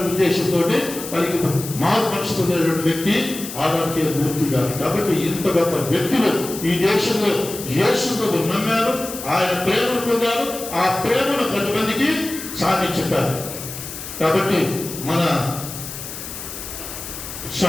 ఉద్దేశంతో మనకి మారు మనసు పొందినటువంటి వ్యక్తి ఆదానికి మూర్తి గారు. కాబట్టి ఇంత గొప్ప వ్యక్తులు ఈ దేశంలో యేసు ప్రభు నమ్మారు, ఆయన ప్రేమను పొందారు, ఆ ప్రేమను 10 మందికి సాటి చెప్పారు. కాబట్టి మన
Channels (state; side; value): noise; left; hiss, 10 dB below the sound